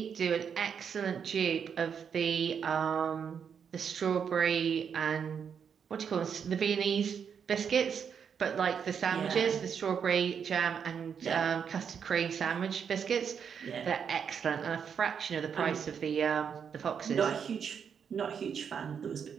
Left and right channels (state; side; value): quieter; left; 7.2 dB